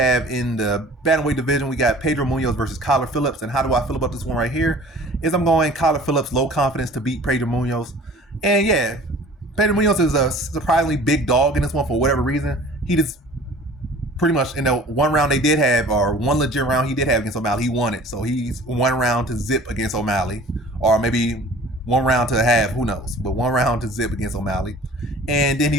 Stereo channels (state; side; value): normal; both; correlation 0.46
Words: in the bantamweight division, we got Pedro Munhoz versus Kyler Phillips. And how do I feel about this one right here? Is I'm going Kyler Phillips, low confidence to beat Pedro Munhoz. And yeah, Pedro Munhoz is a surprisingly big dog in this one for whatever reason. He just pretty much in the one round they did have, or one legit round he did have against O'Malley, he won it. So he's one round to zip against O'Malley, or maybe one round to have, who knows, but one round to zip against O'Malley. And then he